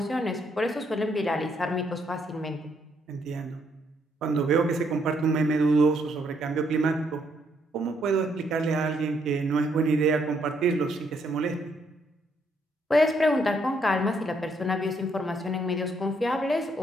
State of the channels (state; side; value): normal; both; correlation 0.72